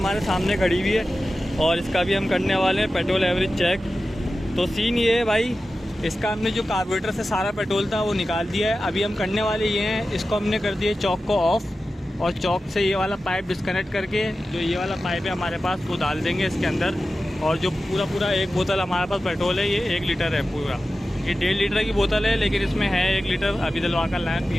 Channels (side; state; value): both; normal; correlation 0.94